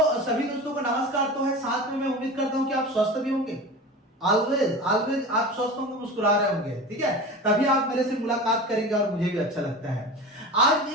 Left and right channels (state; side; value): normal; both; correlation 0.31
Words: सभी दोस्तों को नमस्कार तो है, साथ में मैं उम्मीद करता हूँ कि आप स्वस्थ भी होंगे। ऑलवेज आप स्वस्थ होंगे, मुस्कुरा रहे होंगे, ठीक है, तभी आप मेरे से मुलाकात करेंगे और मुझे भी अच्छा लगता है। आज